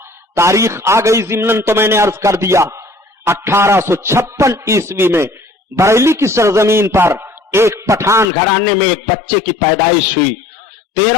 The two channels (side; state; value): right; drops out; at 8.3 s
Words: तारीख आ गई जिमनन तो मैंने अर्ज कर दिया। 1856 ईस्वी में बरेली की सरजमीन पर एक पठान घराने में एक बच्चे की पैदाइश हुई।